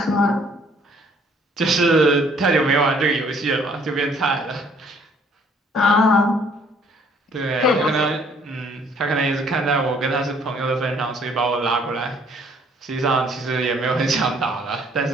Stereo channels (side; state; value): both; normal; correlation 0.61